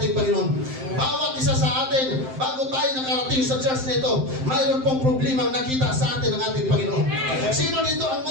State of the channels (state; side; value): late; left; 7.7 ms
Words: Panginoon. Bawat isa sa atin, bago tayo nakarating sa church na ito, mayroon pong problema nakita sa atin ng ating Panginoon. Sino dito ang